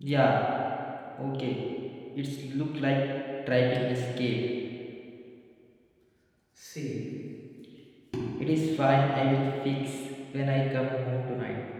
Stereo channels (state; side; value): identical; both; correlation 1.00